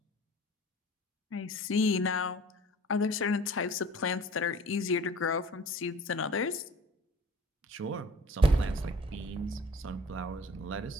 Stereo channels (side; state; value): both; normal; correlation 0.47